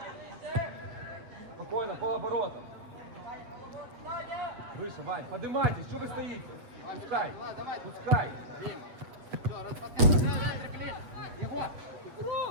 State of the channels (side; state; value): left; late; 8.3 ms